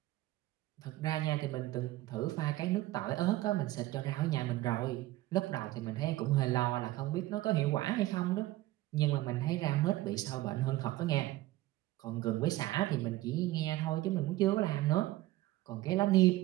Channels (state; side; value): quieter; left; 17.0 dB